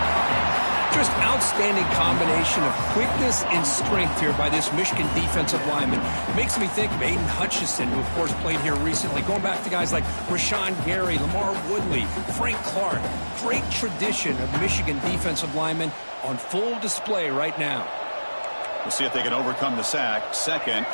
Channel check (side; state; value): both; inverted; correlation -1.00